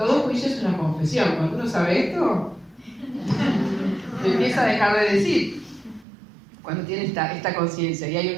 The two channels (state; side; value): drops out; left; at 6.1 s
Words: juicio es una confesión. Cuando uno sabe esto, empieza a dejar de decir. Cuando tiene esta conciencia. Y